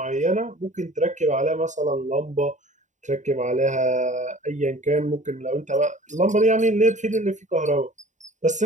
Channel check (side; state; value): left; late; 0.35 ms